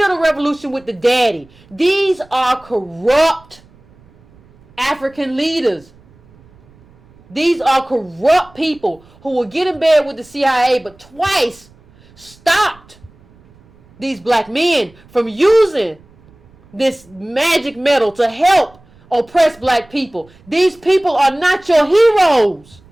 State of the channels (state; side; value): noise; right; rumble, 28 dB below the sound